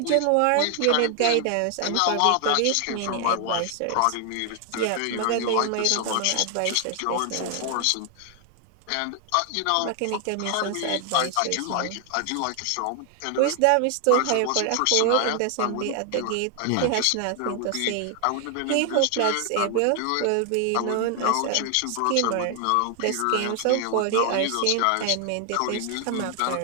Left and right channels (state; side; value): different; both; correlation 0.00